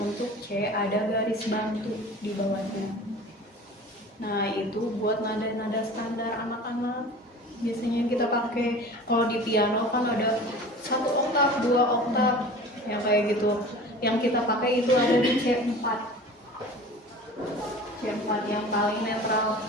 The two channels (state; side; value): normal; both; correlation 0.39